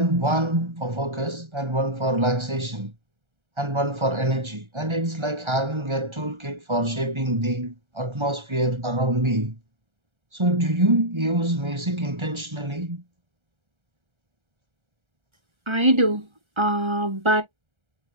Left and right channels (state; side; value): late; left; 1.3 ms